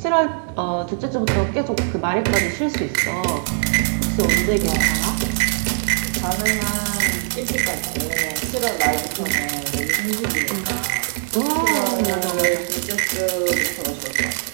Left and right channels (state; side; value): silent; left; digital silence